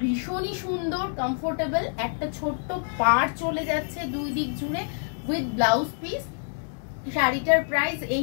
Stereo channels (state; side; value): silent; right; digital silence